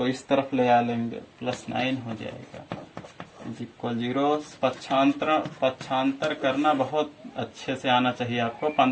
इस तरफ ले आ लेंगे, प्लस 9 हो जाएगा। इक्वल 0। पक्षांतर करना बहुत अच्छे से आना चाहिए आपको।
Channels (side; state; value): both; identical; correlation 1.00